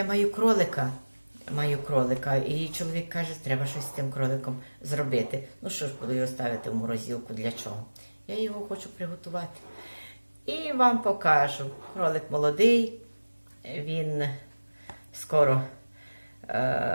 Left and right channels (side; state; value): both; inverted; correlation -1.00